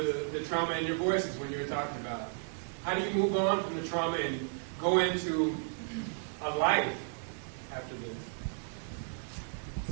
trauma in your voices when you were talking about it. How do you move on from the trauma and go into a life after this?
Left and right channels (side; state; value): left; silent; digital silence